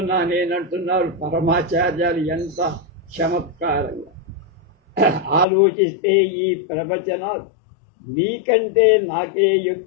నేనంటున్నారు పరమాచార్యాలు. ఎంత చమత్కారంగా ఆలోచిస్తే ఈ ప్రవచనాలు నీకంటే నాకే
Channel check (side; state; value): right; drops out; at 5.5 s